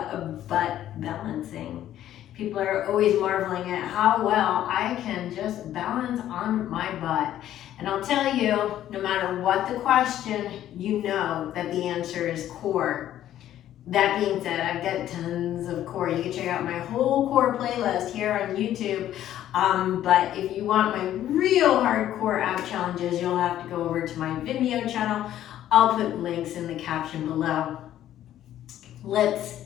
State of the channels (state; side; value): quieter; right; 12.1 dB